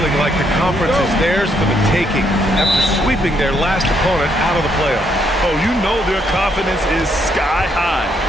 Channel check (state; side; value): normal; both; correlation 0.73